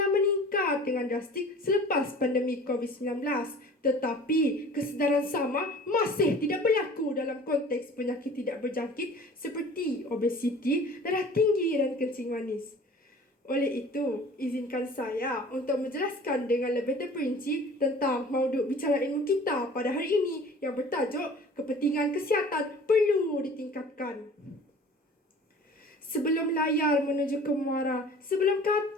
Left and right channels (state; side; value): normal; both; correlation 0.45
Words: meningkat dengan drastik selepas pandemik COVID-19. Tetapi kesedaran sama masih tidak berlaku dalam konteks penyakit tidak berjangkit seperti obesiti, darah tinggi dan kencing manis. Oleh itu, izinkan saya untuk menjelaskan dengan lebih terperinci tentang mauduk bicara ilmu kita pada hari ini yang bertajuk kepentingan kesihatan perlu ditingkatkan. Sebelum layar menuju ke muara, sebelum